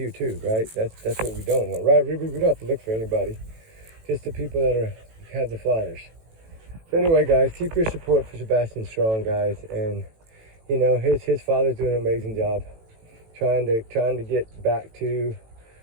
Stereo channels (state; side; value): late; left; 18 ms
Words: too, right? That's what we don't want, right, Ruby? We don't have to look for anybody, just the people that have the flyers. So anyway, guys, keep your support for Sebastin strong, guys. And you know, his father's doing an amazing job, trying to get back to